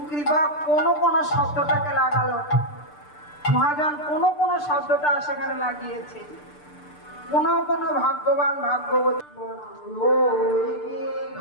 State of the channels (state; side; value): late; right; 6.8 ms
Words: কৃপা কোনো কোনো শব্দটাকে লাগালো, মহাজন কোনো কোনো শব্দটা সেখানে লাগিয়েছে। কোন কোন ভাগ্যবান ভাগ্যবতী